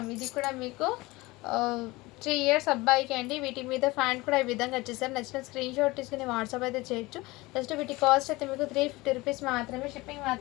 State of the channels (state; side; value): quieter; right; 21.4 dB